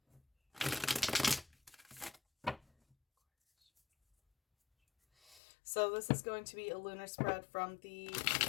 So this is going to be a lunar spread from the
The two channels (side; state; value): right; drops out; at 5.4 s